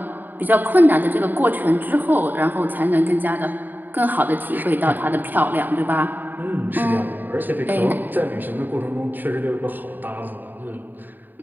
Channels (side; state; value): left; late; 0.089 ms